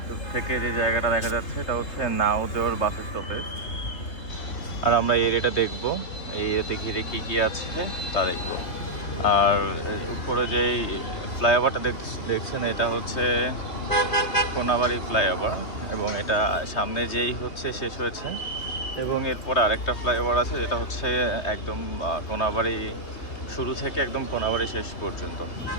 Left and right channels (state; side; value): late; right; 3.1 ms